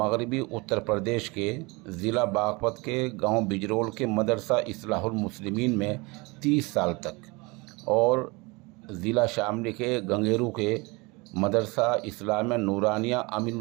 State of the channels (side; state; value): left; quieter; 26.0 dB